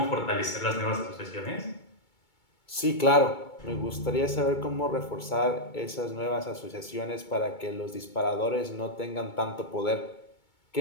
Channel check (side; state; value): right; late; 2.2 ms